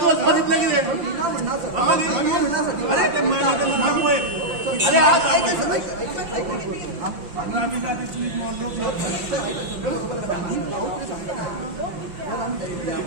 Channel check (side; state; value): left; late; 5.8 ms